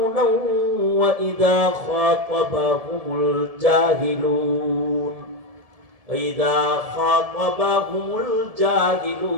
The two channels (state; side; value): late; left; 1.7 ms